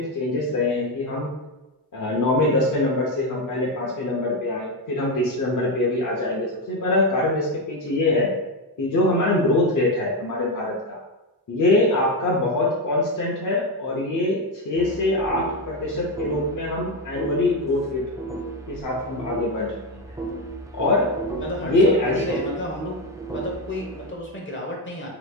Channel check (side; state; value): both; normal; correlation 0.09